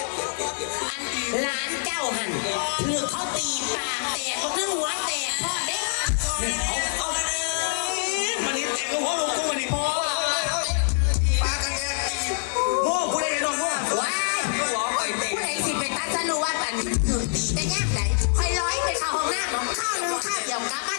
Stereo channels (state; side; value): silent; right; digital silence